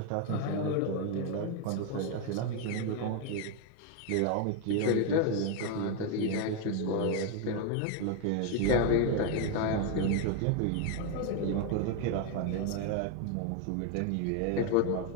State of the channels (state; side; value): different; both; correlation 0.01